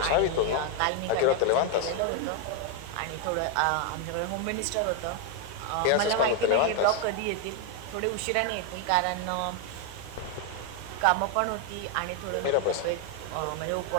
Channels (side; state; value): both; different; correlation 0.01